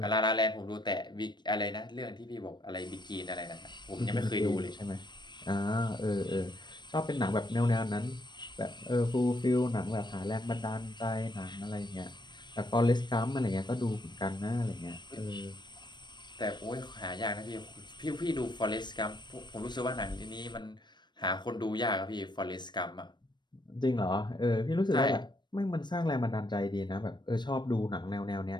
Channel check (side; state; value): right; late; 0.22 ms